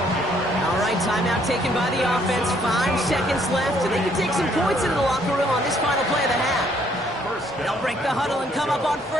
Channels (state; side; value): normal; both; correlation 0.66